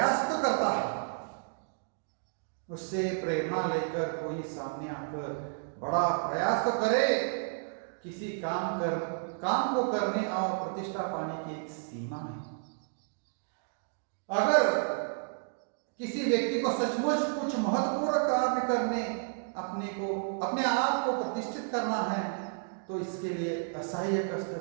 तो करता है। उससे प्रेरणा लेकर कोई सामने आकर बड़ा प्रयास तो करे। किसी काम को करने और प्रतिष्ठा पाने की एक सीमा है। अगर किसी व्यक्ति को सचमुच कुछ महत्वपूर्ण कार्य करने, अपने आप को प्रतिष्ठित करना है, तो इसके लिए असह्य कष्ट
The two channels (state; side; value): silent; left; digital silence